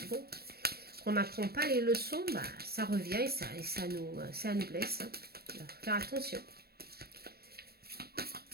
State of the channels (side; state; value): left; late; 0.46 ms